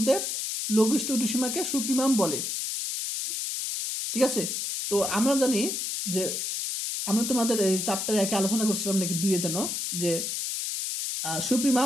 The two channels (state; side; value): noise; left; hiss, 2 dB below the sound